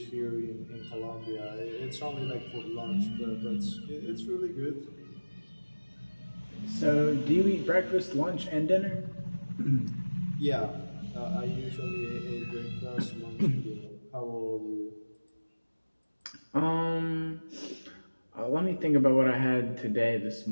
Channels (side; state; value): both; inverted; correlation -1.00